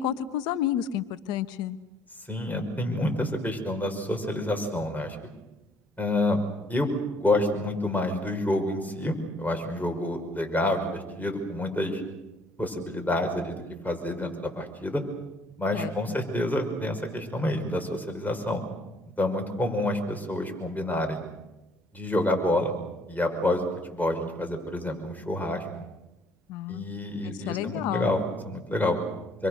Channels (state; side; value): normal; both; correlation 0.62